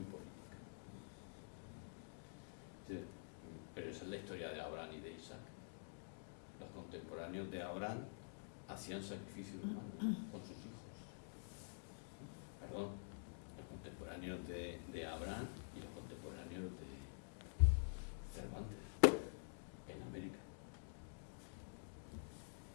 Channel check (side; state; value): right; silent; digital silence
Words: política. Sí, pero esa es la historia de Abraham y de Isaac. Los contemporáneos de Abraham hacían sacrificios humanos con sus hijos. Perdón, los contemporáneos de Abraham y los contemporáneos de Cervantes en América.